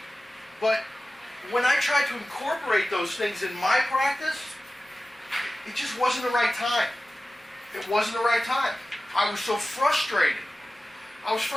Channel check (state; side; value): normal; both; correlation 0.96